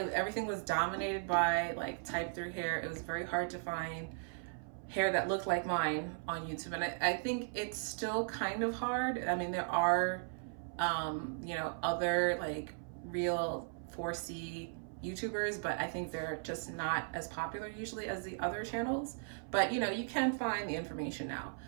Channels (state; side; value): silent; left; 53 dB below the other